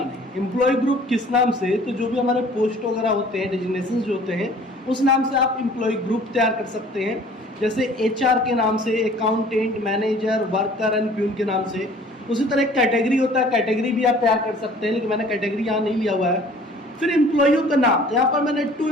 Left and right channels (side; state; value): both; normal; correlation 0.51